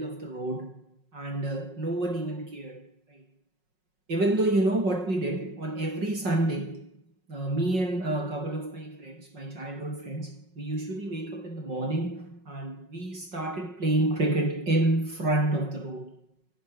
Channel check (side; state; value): left; late; 5.4 ms